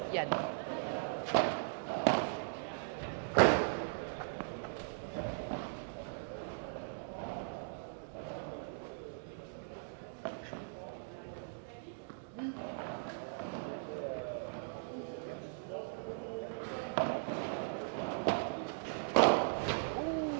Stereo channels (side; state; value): left; silent; digital silence